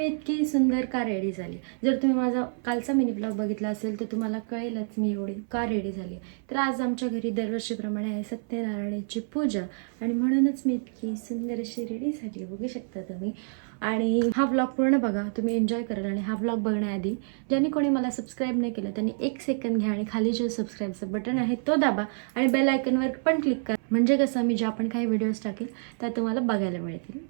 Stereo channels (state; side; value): silent; left; 58 dB below the other